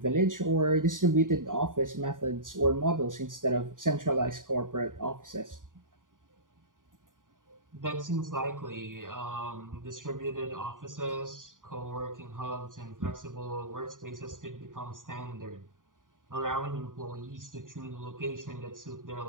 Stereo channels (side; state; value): left; late; 0.89 ms